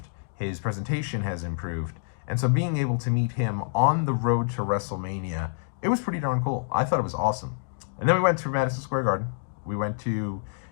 His presentation has improved. And so being able to meet him on the road to WrestleMania, it was pretty darn cool. I thought it was awesome. And then we went to Madison Square Garden. We went to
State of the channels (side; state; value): right; silent; digital silence